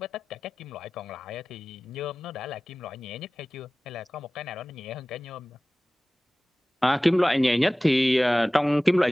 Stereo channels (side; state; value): both; normal; correlation 0.97